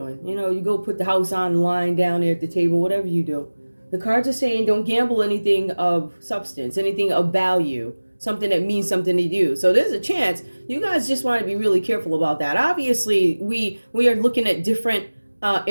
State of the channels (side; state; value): both; inverted; correlation -1.00